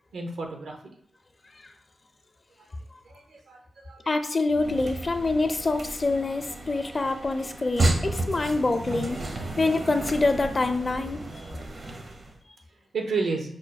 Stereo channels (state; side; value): normal; both; correlation 0.91